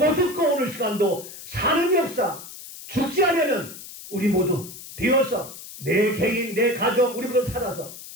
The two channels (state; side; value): noise; left; hiss, 14 dB below the sound